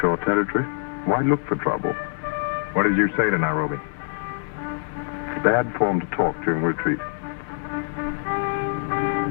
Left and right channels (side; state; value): right; silent; digital silence